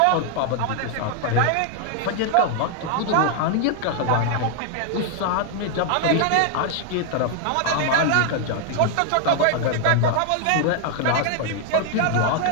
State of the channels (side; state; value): both; different; correlation 0.00